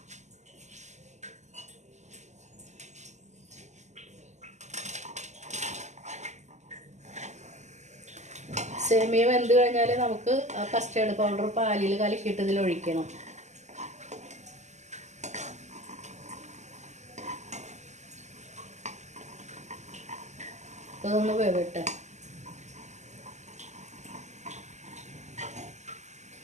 സേമിയ വെന്ത് കഴിഞ്ഞാൽ നമുക്ക് ആ കസ്റ്റേർഡ് പൗഡർ പാലിൽ കലക്കിയിട്ട് ഇതിൽ ഒഴിക്കണം. അതൊന്ന് വേവട്ടെ.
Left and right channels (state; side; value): late; left; 0.33 ms